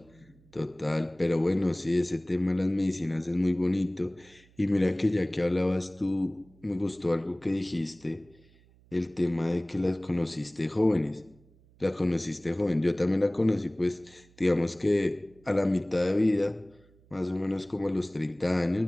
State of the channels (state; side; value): noise; right; hum, 29 dB below the sound